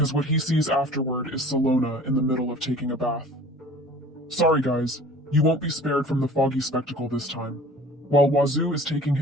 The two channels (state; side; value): normal; both; correlation 0.45